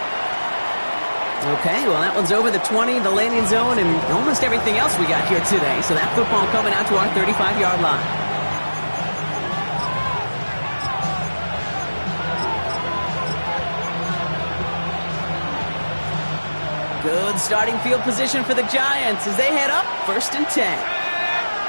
Okay, well, that one's over the 20, the landing zone, and almost everything else we got here today. So that football coming out to our 35-yard line. Good starting field position for the Giants as they head up 1st and 10.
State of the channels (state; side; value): inverted; both; correlation -1.00